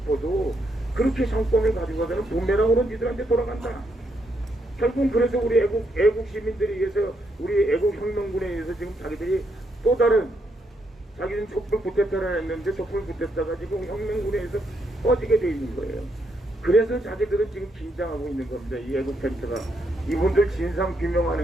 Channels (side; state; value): both; normal; correlation 0.77